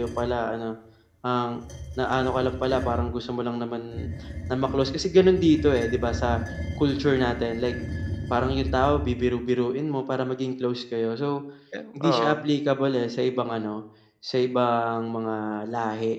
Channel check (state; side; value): identical; both; correlation 1.00